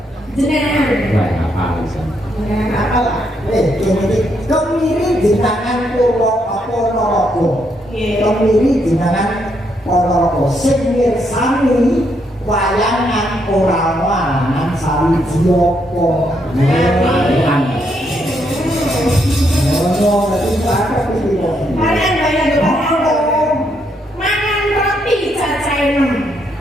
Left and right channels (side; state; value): both; normal; correlation 0.76